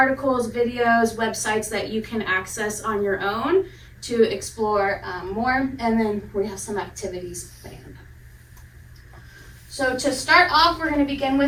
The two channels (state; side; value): identical; both; correlation 1.00